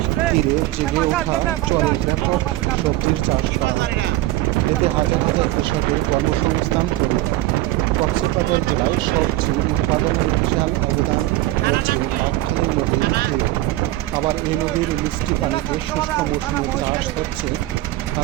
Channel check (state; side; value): quieter; left; 16.6 dB